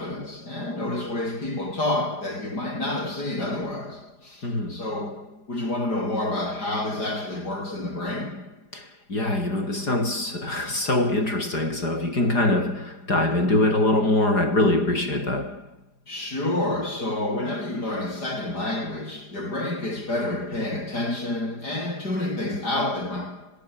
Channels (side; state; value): right; late; 4.9 ms